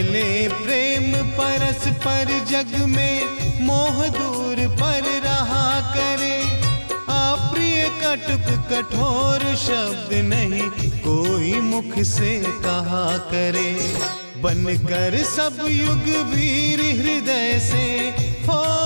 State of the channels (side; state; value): both; inverted; correlation -1.00